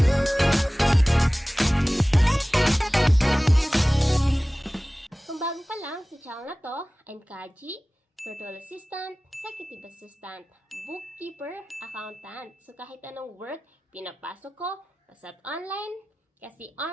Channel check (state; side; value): normal; both; correlation 0.97